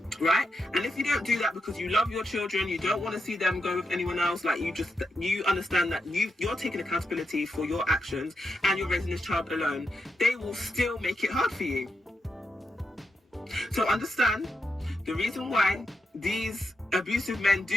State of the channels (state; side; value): normal; both; correlation 0.85